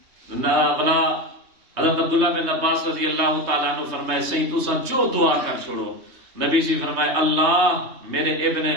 بلا حضرت عبداللہ بن عباس رضی اللہ تعالیٰ عنہ فرمائے سہی تو سن جو دعا کر چھوڑو نبی سی فرمائے اللہ میرے ابن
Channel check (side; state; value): left; late; 3.2 ms